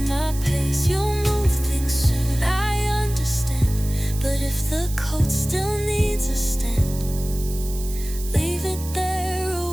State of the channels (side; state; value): right; noise; hiss, 13 dB below the sound